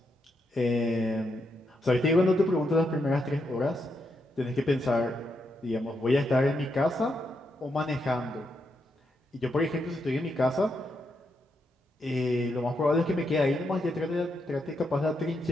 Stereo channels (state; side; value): normal; both; correlation 0.81